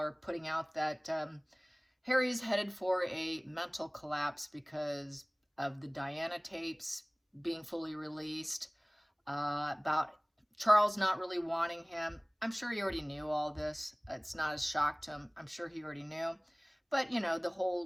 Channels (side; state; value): both; identical; correlation 1.00